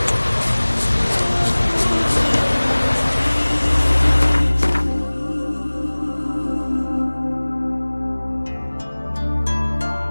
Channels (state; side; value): inverted; both; correlation -1.00